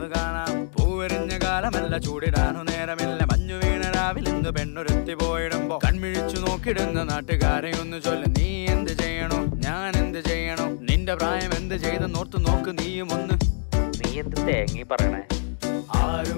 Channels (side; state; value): right; silent; digital silence